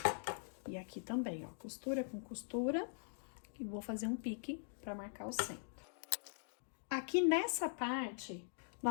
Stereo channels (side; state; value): right; silent; digital silence